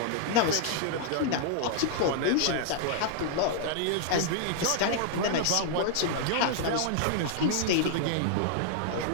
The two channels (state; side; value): different; both; correlation -0.01